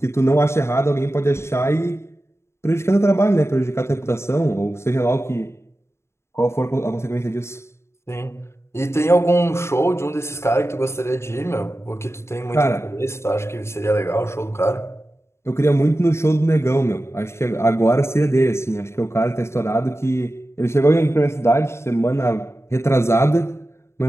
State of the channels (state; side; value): late; right; 0.13 ms